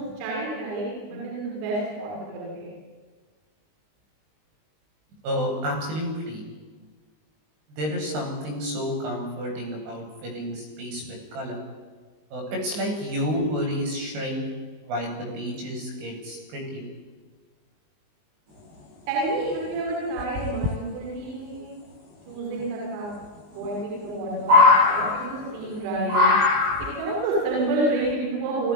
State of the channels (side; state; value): left; late; 19 ms